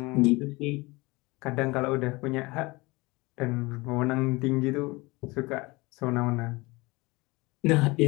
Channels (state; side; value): quieter; right; 23.6 dB